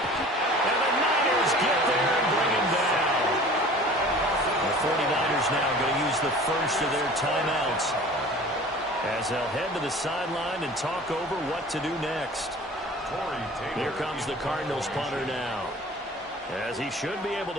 And the Niners get there and bring him down. The 49ers now going to use the first of their timeouts as they'll head to the sideline and talk over what to do next. Here comes the Cardinals punter now, as he should be able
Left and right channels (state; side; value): normal; both; correlation 0.44